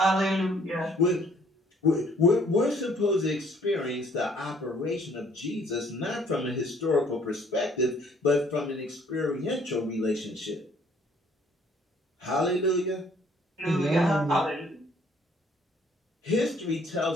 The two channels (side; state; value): both; normal; correlation 0.61